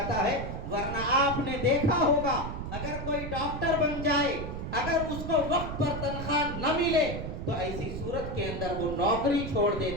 ہے۔ ورنہ آپ نے دیکھا ہوگا اگر کوئی ڈاکٹر بن جائے، اگر اس کو وقت پر تنخواہ نہ ملے تو ایسی صورت کے اندر وہ نوکری چھوڑ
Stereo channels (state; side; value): noise; right; rumble, 6 dB below the sound